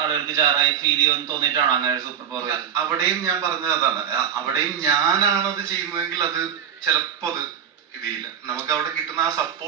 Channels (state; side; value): quieter; left; 8.3 dB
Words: ജാറായി ഫീൽ ചെയ്യുമെന്ന് തോന്നിയിട്ടാണോ അങ്ങനെ ഒരു സൂപ്പർ പവർ? അവിടെയും ഞാൻ പറഞ്ഞത് അതാണ്. അവിടെയും ഞാനാണത് ചെയ്യുന്നതെങ്കിൽ അത് ചിലപ്പോ അത് ഇതില്ല. നമുക്ക് അവിടെ കിട്ടുന്ന ആ